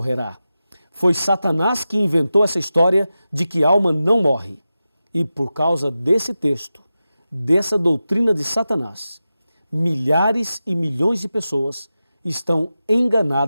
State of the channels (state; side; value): inverted; both; correlation -0.93